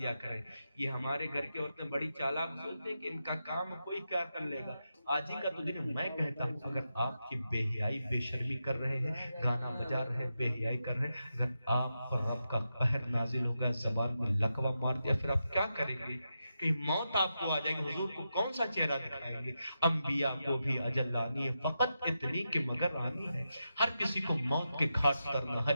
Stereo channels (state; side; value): inverted; both; correlation -0.88